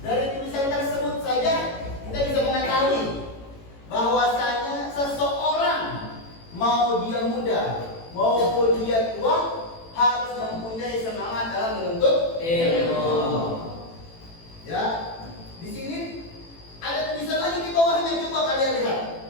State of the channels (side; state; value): right; late; 18 ms